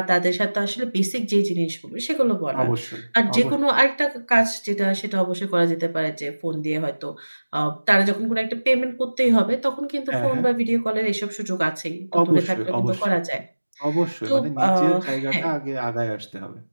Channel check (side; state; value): both; inverted; correlation -1.00